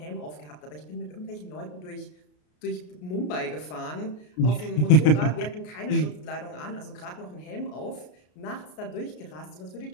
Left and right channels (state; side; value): late; right; 33 ms